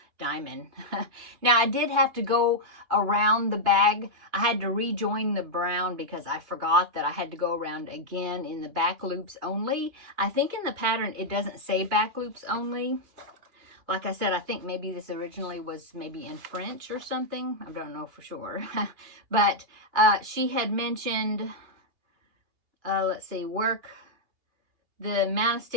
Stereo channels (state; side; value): late; left; 2.7 ms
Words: diamond. Now, I did have to go around the bag. I had to rejoin the brown because I forgot that I had to go around again in the back loops only. I think in the pattern, it doesn't say back loops only. Like I said, I think maybe this originally was maybe in French or something. I don't know for sure. But she had mentioned, let's see, work the amount of